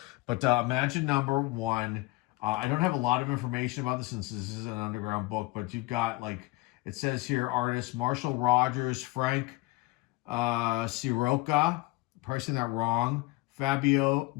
but imagine number 1. I don't have a lot of information about this since this is an Underground book, but you've got it says here, artists Marshall Rogers, Frank Sirocca, probably saying that wrong, Fabio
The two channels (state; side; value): quieter; right; 21.7 dB